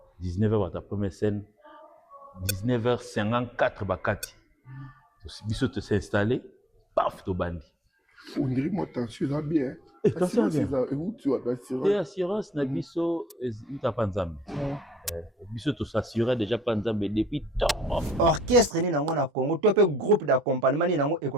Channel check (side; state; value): both; normal; correlation 0.63